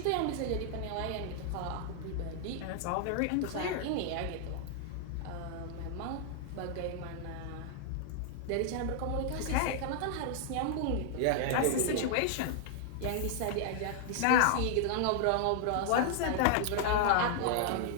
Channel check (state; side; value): different; both; correlation 0.00